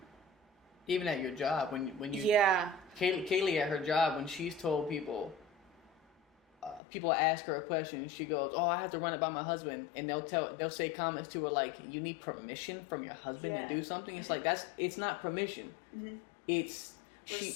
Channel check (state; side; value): drops out; right; at 6.8 s